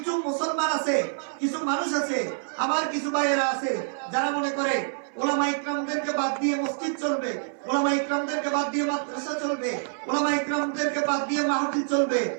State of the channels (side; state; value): left; silent; 57 dB below the other